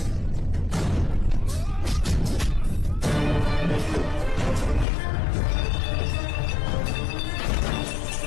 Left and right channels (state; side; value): drops out; right; at 4.9 s